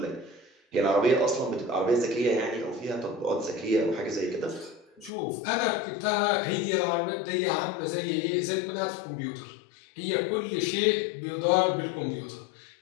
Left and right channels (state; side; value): drops out; right; at 5.1 s